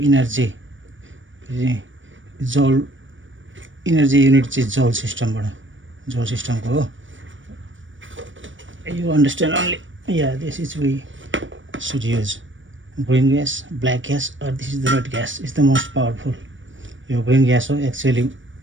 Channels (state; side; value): late; left; 0.56 ms